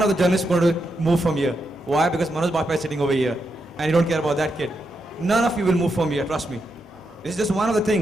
of the journalists are going to move from here. Why? Because Manoj Bajpayee is sitting over here and you don't care about that kid. None of you will move from here, trust me. This is just one of the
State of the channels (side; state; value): both; normal; correlation 0.83